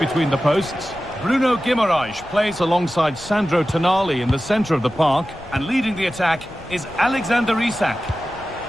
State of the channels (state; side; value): noise; left; rumble, 20 dB below the sound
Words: the posts. Bruno Guimaraes plays alongside Sandro Tonali in the centre of the park. And leading the attack is Alexander Isak.